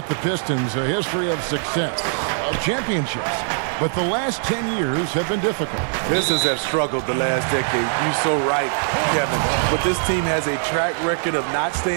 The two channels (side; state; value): left; silent; digital silence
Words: the Pistons, a history of success, of championships. But the last 10 years have been difficult. Pistons have struggled the last decade. You're so right, Kevin. But this team has a track record of not